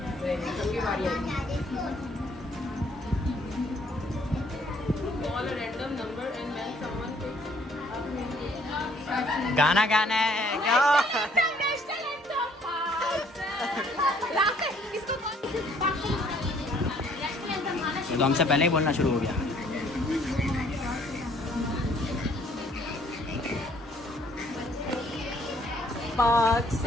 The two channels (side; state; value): both; normal; correlation 0.62